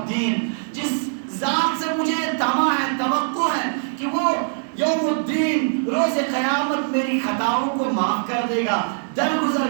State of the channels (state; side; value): silent; left; digital silence